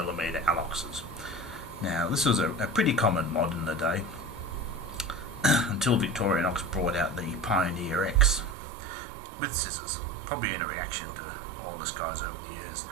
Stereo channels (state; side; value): drops out; left; at 8.6 s